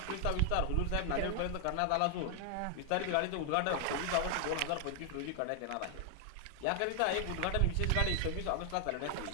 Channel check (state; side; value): different; both; correlation 0.00